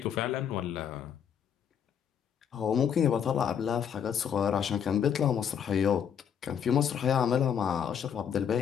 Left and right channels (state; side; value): quieter; right; 8.2 dB